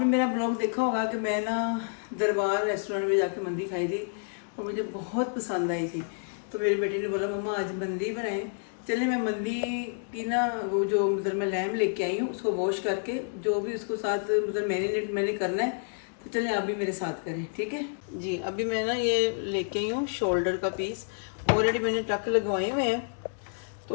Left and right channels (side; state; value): right; silent; digital silence